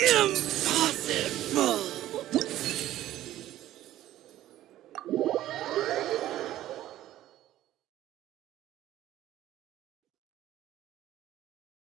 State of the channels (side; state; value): left; quieter; 13.8 dB